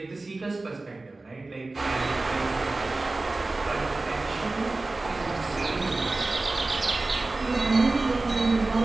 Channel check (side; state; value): left; quieter; 3.2 dB